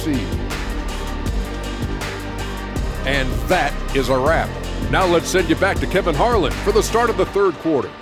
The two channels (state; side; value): identical; both; correlation 1.00